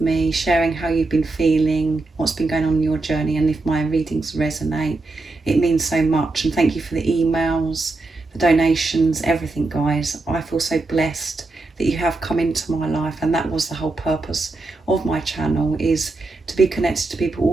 me, sharing how you've been feeling, what's been going on in your journey, and if my readings resonate, it means so much. And thank you for the emails, the donations, everything, guys. I feel so blessed that you have come into my life, and that was the whole purpose of my channel, is to be connected to people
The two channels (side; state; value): left; quieter; 3.3 dB